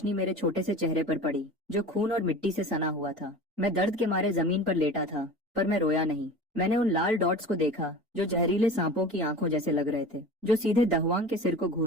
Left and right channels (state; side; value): normal; both; correlation 0.36